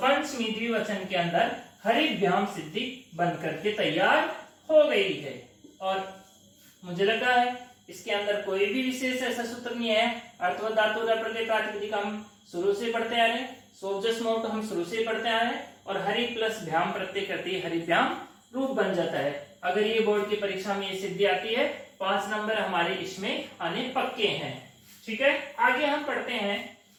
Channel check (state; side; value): identical; both; correlation 1.00